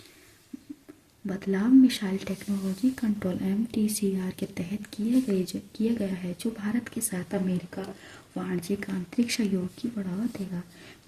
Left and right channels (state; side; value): identical; both; correlation 1.00